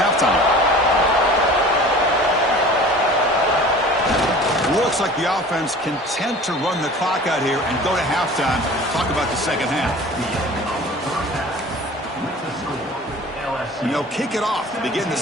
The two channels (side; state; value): both; normal; correlation 0.43